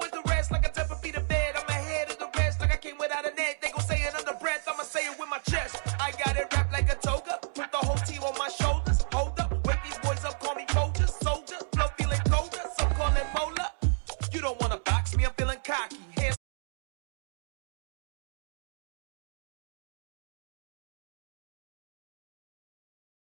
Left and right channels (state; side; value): silent; left; digital silence